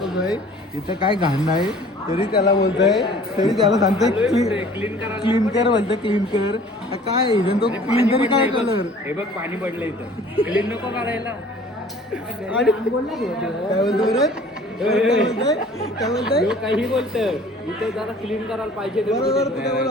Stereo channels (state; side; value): normal; both; correlation 0.50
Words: इथं काय घाण नाही तरी त्याला बोलतोय. तरी त्याला सांगतोय क्लीन कर बोलतोय. क्लीन कर काय इव्हन तो क्लीन तरी काय कलर. हे बघ पाणी पडलं इथं. क्लीन नको करायला. आणि काय बोलतो रे. काय बोलतोय काही बोलत इथे जरा क्लीन करायला पाहिजे. बरोबर